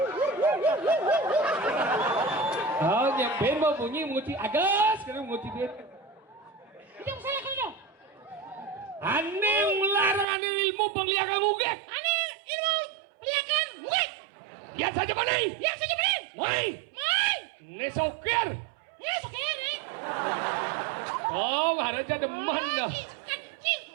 Oh, yang ben mau bunyi menguci agas, sekarang menguci duit. Yang saya kalau Ane melarang ane ilmu pemeliharaan ugek. Ane ilmu peliharaan ugek. Yang saja boleh. Woi. Ini sokir. Sekali. Oh, harusnya demen dah.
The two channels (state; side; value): drops out; left; at 10.2 s